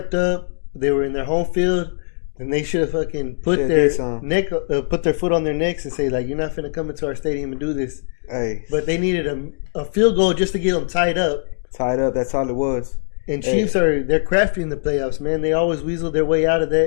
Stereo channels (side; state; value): right; silent; digital silence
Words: up. They were in their home field, and they should have fucking put their foot on their necks and say like, "You're not finna come into our stadium and do this." Hey. But they needed a field goal just to get them tied up. Tied up. That's all it was. And Chiefs they're crafty in the playoffs, man. They always weasel their way out of